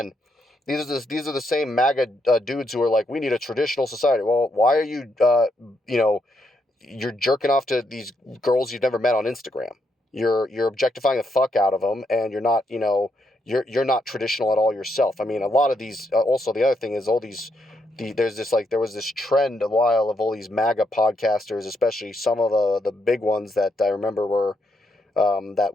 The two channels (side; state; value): both; normal; correlation 0.78